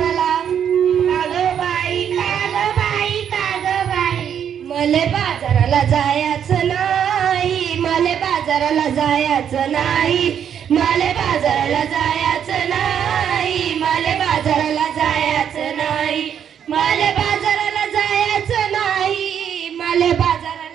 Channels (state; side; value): quieter; left; 8.7 dB